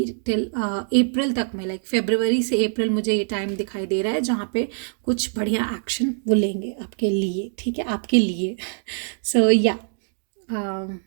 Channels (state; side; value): silent; left; digital silence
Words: till April तक में, like February से April मुझे ये टाइम दिखाई दे रहा है जहाँ पे कुछ बढ़िया एक्शन वो लेंगे आपके लिए, ठीक है, आपके लिए. So yeah,